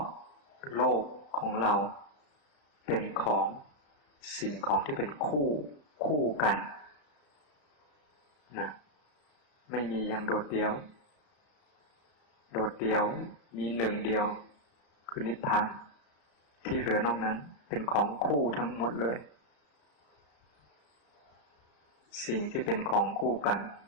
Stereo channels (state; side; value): late; right; 34 ms